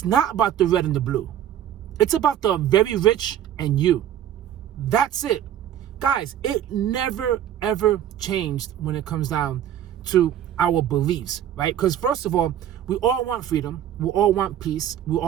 not about the red and the blue. It's about the very rich and you. That's it. Guys, it never, ever changed when it comes down to our beliefs, right? Because first of all, we all want freedom. We all want peace. We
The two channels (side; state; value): left; quieter; 10.7 dB